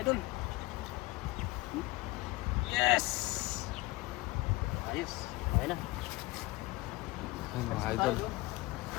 idol. Yes! Ayos. Okay na. Ay, mga idol.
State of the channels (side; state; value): right; quieter; 20.2 dB